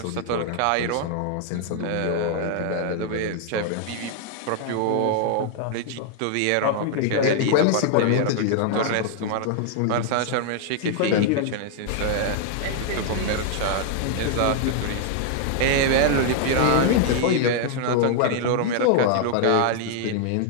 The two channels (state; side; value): different; both; correlation 0.00